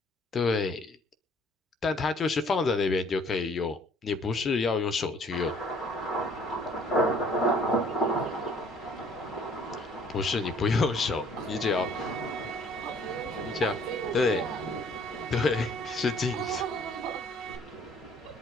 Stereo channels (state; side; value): normal; both; correlation 0.57